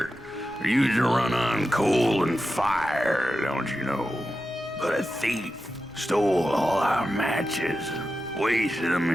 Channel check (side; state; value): right; noise; rumble, 24 dB below the sound